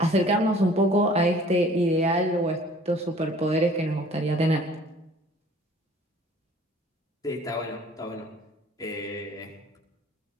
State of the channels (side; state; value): both; normal; correlation 0.51